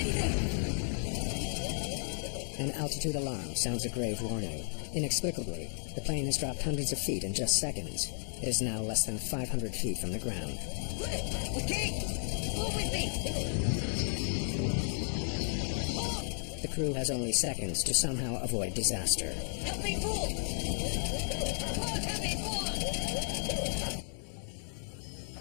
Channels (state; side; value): silent; right; digital silence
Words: An altitude alarm sounds a grave warning. Inexplicably, the plane has dropped hundreds of feet in just seconds. It is now less than 500 feet from the ground. Okay. Move with me. The crew has only seconds to somehow avoid disaster. Help me pull. Help me pull.